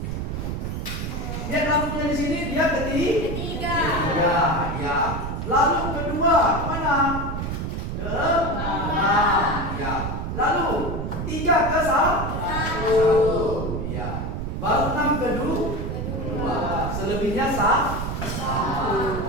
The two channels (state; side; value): noise; right; rumble, 4 dB below the sound